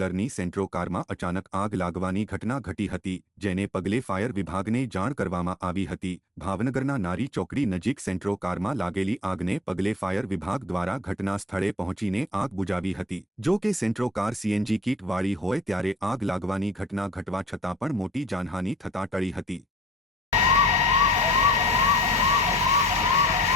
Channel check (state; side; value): normal; both; correlation 0.54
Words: સેન્ટ્રો કારમાં અચાનક આગ લાગવાની ઘટના ઘટી હતી, જેને પગલે ફાયર વિભાગને જાણ કરવામાં આવી હતી। ભાવનગરના નારી ચોકડી નજીક સેન્ટ્રો કારમાં લાગેલી આગને પગલે ફાયર વિભાગ દ્વારા ઘટના સ્થળે પહોંચીને આગ બુઝાવી હતી। જો કે સેન્ટ્રો કાર સીએનજી કીટ વાળી હોય ત્યારે આગ લાગવાની ઘટના ઘટવા છતાં પણ મોટી જાનહાનિ થતાં ટળી હતી।